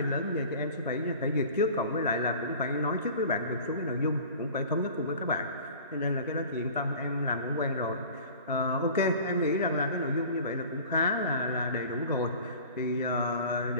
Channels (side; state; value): both; inverted; correlation -0.42